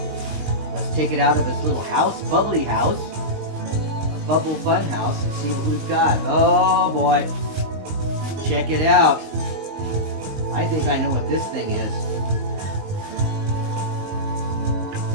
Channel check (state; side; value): late; left; 19 ms